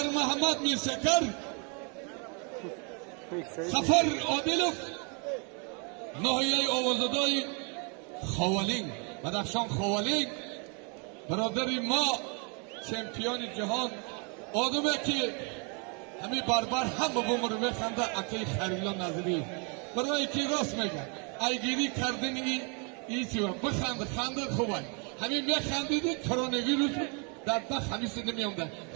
محمد میر شکر سفر عادلوف ناحیه آوازدای خوالینگ بدخشان خوالینگ برادری ما چمپیون جهان آدمه که همین بربر هم به بومر میخنده اکی خریلا نظری برای که راست میگن ایگیری کردن این چیوه بخنده خنده خوبه همین میخندیدی کرونا ویروس در بخ همین سنده میامده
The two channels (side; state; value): left; quieter; 35.6 dB